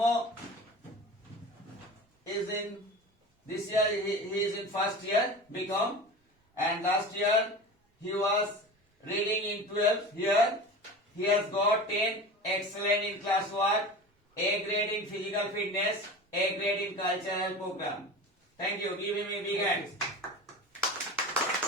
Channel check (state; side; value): normal; both; correlation 0.33